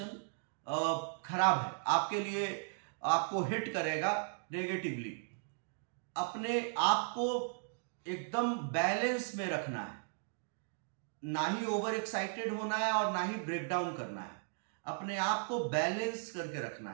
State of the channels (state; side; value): silent; left; digital silence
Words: खराब है आपके लिए, आपको हिट करेगा नेगेटिवली. अपने आप को एकदम बैलेंस में रखना है, ना ही ओवर एक्साइटेड होना है और ना ही ब्रेक डाउन करना है. अपने आप को बैलेंस करके रखना